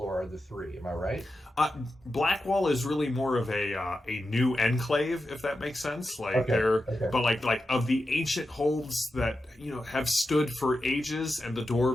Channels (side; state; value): both; normal; correlation 0.90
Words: are the 3. Am I right? Blackwall is really more of a new enclave, if that makes sense. Like but like of the ancient holds that have stood for ages, and the